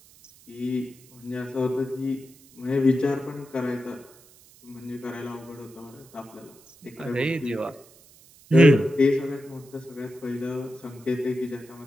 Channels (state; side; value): noise; right; hiss, 25 dB below the sound